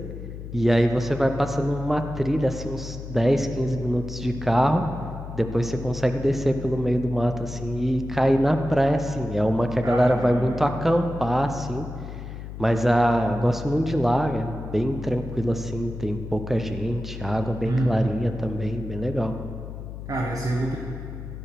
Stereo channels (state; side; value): noise; left; hum, 10 dB below the sound